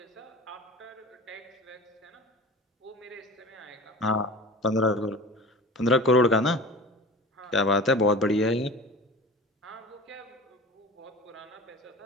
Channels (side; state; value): both; normal; correlation 0.37